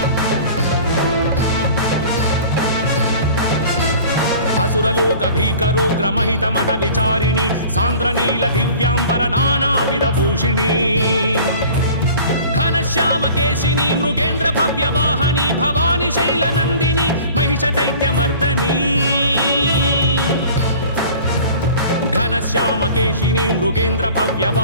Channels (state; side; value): inverted; both; correlation -0.44